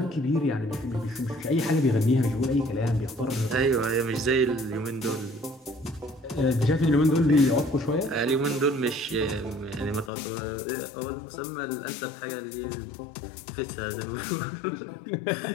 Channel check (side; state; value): right; drops out; at 10.1 s